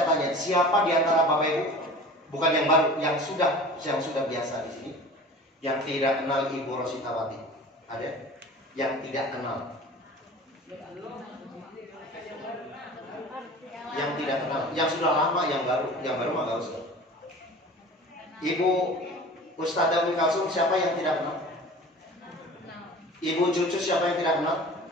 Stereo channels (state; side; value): normal; both; correlation 0.40